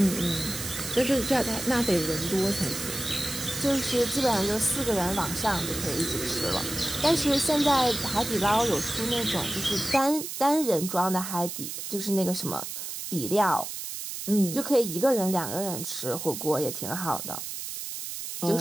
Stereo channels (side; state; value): right; noise; hiss, 7 dB below the sound